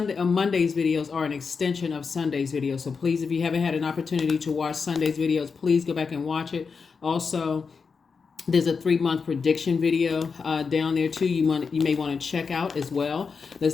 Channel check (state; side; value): quieter; right; 5.3 dB